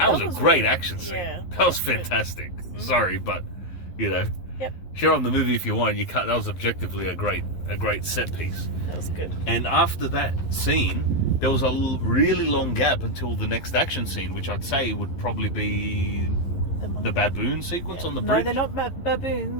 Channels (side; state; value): right; late; 11 ms